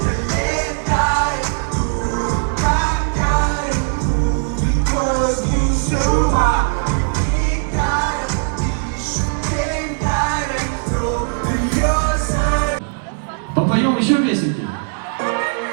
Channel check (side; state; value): left; silent; 59 dB below the other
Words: Попоем еще песенки?